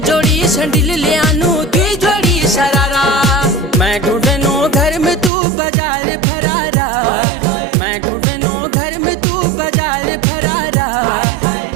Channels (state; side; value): drops out; left; at 5.3 s